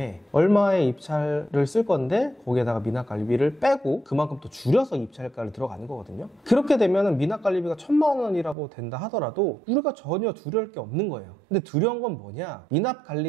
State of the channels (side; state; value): left; drops out; at 8.6 s